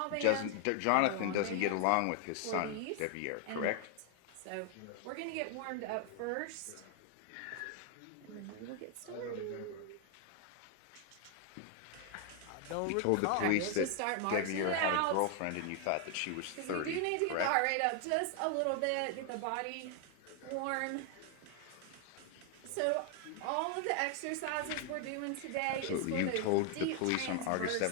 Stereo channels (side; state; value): both; different; correlation 0.00